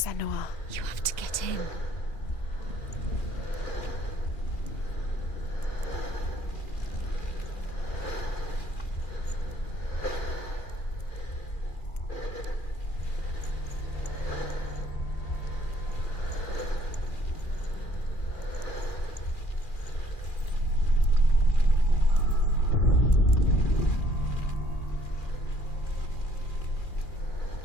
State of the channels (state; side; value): late; right; 2.4 ms